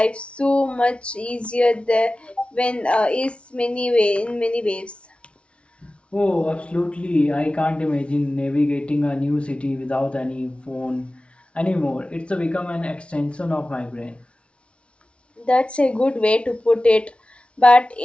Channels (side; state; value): right; late; 0.060 ms